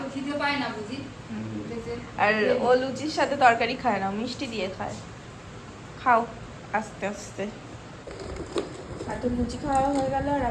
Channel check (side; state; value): both; identical; correlation 1.00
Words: খিদে পায় না বুঝি? আর ও লুচির সাথে তরকারি খায় না, মিষ্টি দিয়ে খায়। খাও আস্তে আস্তে। এত লুচি খাওয়া হয়ে গেল আর